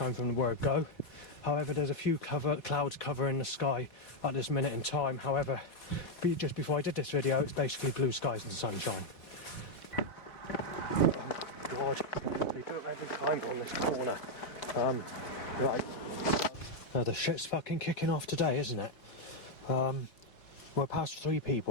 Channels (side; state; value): right; late; 4.2 ms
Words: from the word go. However, there's a few clouds covering the sky at this minute in time. However, just before I did this video, it's basically blue skies and sunshine. Oh God, they do it every time on this corner. Right, the shit's fucking kicking off today, isn't it? We're past 3